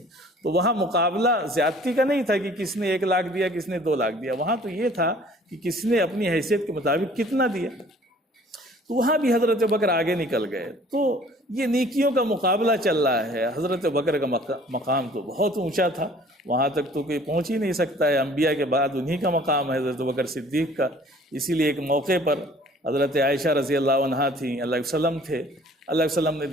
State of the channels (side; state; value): both; normal; correlation 0.53